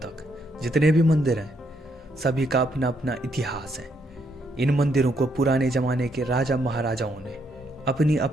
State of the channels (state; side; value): normal; both; correlation 0.74